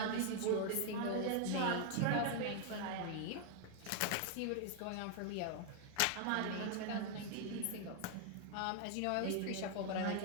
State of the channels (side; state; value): both; different; correlation 0.00